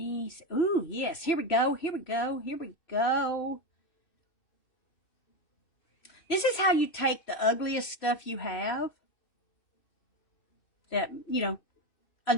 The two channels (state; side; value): late; right; 2.6 ms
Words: see. Ooh, yes. Here we go. Here we go. Here we go. This is how you take the ugliest stuff you have that, you know, a